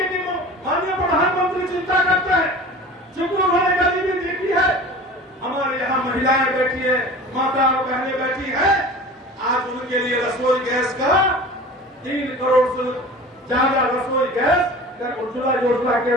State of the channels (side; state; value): both; normal; correlation 0.39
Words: की माननीय प्रधानमंत्री चिंता करते हैं, चूंकि उन्होंने गरीबी देखी है। हमारे यहाँ महिलाएं बैठी है, माता और बहनें बैठी है, आज उनके लिए रसोई गैस का 3 करोड़ से ज्यादा रसोई गैस उज्ज्वला योजना के